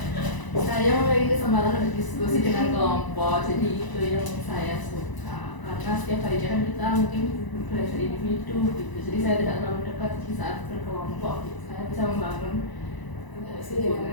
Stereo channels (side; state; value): right; late; 1.0 ms